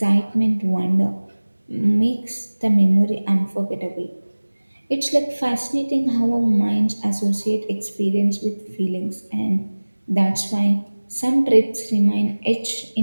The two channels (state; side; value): inverted; both; correlation -1.00